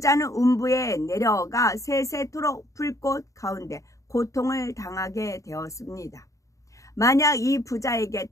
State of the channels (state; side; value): late; right; 0.16 ms